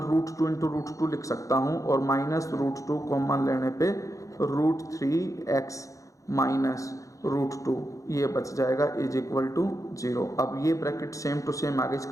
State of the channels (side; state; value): right; late; 0.16 ms